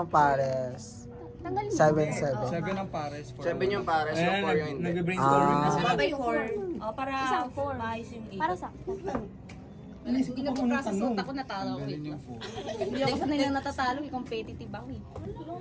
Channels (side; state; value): both; identical; correlation 1.00